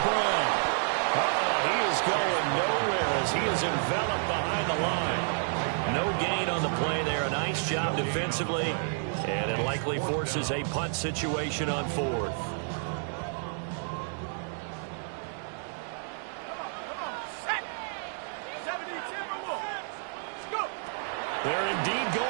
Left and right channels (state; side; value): silent; left; 58 dB below the other